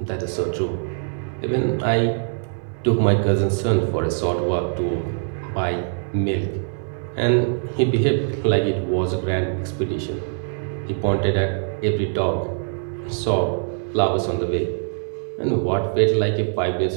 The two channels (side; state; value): left; silent; digital silence